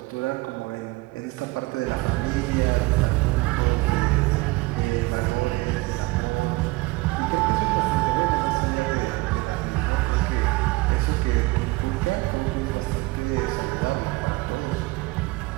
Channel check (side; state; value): left; quieter; 22.7 dB